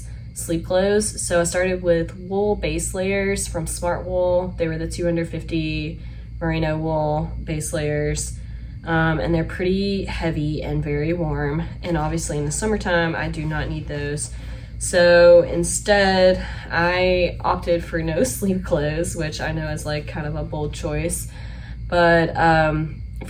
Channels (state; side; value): identical; both; correlation 1.00